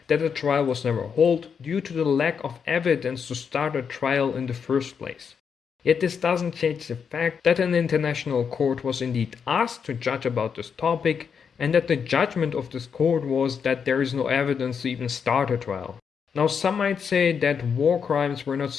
that the trial was never held due to the lack of evidence to start a trial in the first place. Yet this doesn't change the fact that an international court was indeed asked to judge about this topic, and that the judgment of this court was that there is no evidence to even start a trial. Now, some might say that war crimes were not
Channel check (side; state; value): right; quieter; 6.6 dB